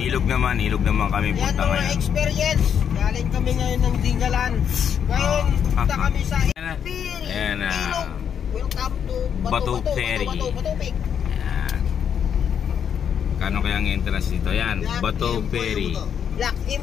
naman kami punta ngayon. Yan, experience. Galing kami ngayon ng Dingalan. Ngayon, punta kami sa Ilog. Welcome to Bato Ferry. Yan. Kano kaya ang entrance dito? Yan, Bato Ferry. Black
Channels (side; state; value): right; quieter; 8.1 dB